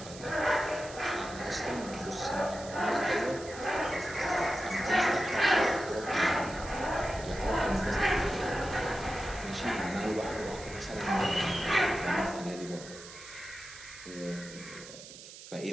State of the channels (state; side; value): noise; right; hiss, 15 dB below the sound